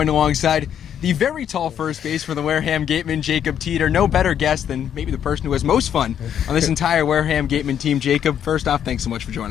alongside the very tall first base for the Wareham Gateman, Jacob Teter. No better guest than maybe the person who has most fun on this entire Wareham Gateman team. Jacob, first off, thanks so much for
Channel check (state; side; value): quieter; right; 9.2 dB